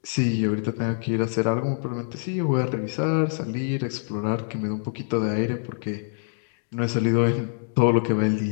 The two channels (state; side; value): silent; right; digital silence